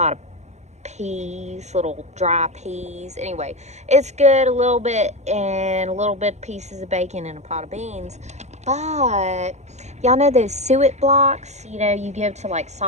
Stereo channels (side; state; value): left; late; 0.33 ms